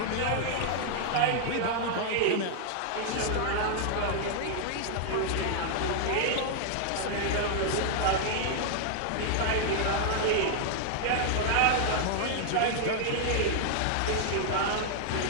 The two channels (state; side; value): different; both; correlation 0.00